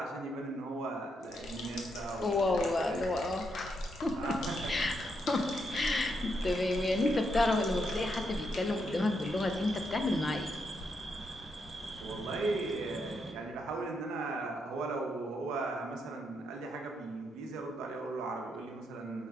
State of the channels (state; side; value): normal; both; correlation 0.80